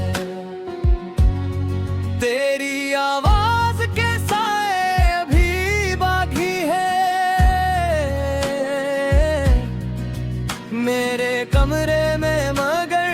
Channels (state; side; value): identical; both; correlation 1.00